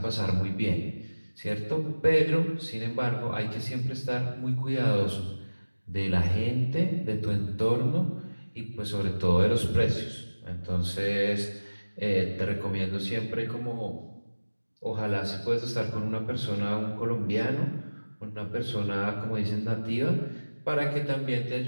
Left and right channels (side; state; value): both; inverted; correlation -1.00